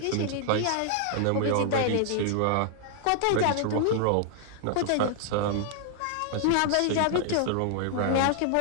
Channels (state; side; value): different; both; correlation 0.00